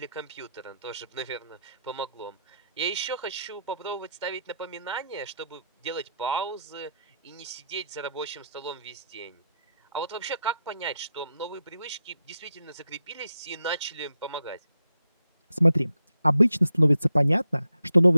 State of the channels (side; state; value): both; inverted; correlation -0.83